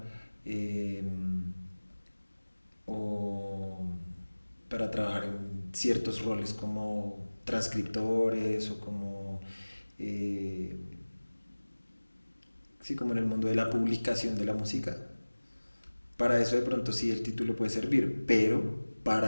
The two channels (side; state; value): both; inverted; correlation -1.00